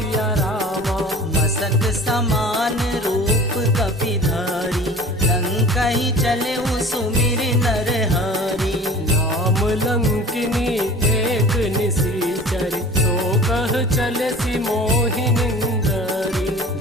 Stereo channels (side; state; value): both; normal; correlation 0.42